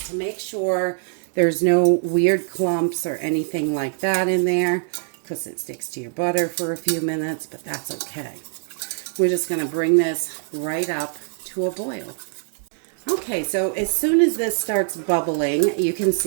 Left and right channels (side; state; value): left; silent; digital silence